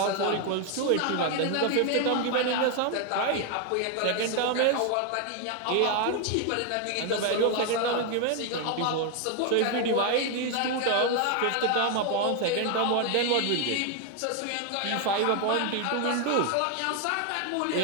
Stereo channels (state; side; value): different; both; correlation 0.01